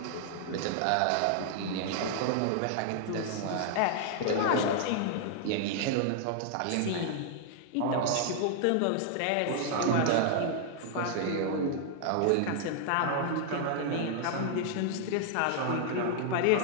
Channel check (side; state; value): both; different; correlation 0.00